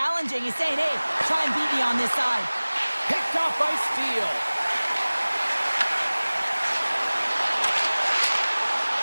He's saying, hey, try and beat me on this side. Picked off by Steele.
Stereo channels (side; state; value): both; inverted; correlation -1.00